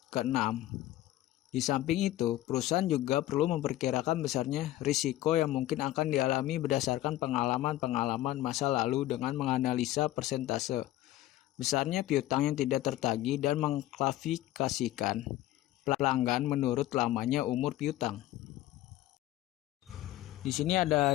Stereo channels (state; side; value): quieter; right; 14.8 dB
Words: ke-6. Di samping itu, perusahaan juga perlu memperkirakan besarnya risiko yang mungkin akan dialami berdasarkan pengalaman masa lalu dengan menganalisa persentase besarnya piutang yang tidak tertagih dan mengklasifikasikan pelanggan menurut lamanya umur piutang. Di sini ada